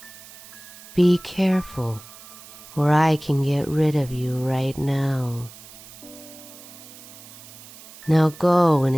Be careful, or I can get rid of you right now. Now go and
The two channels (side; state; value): right; noise; hiss, 18 dB below the sound